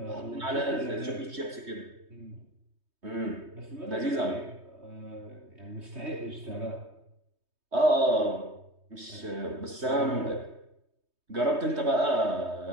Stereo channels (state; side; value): late; left; 3.2 ms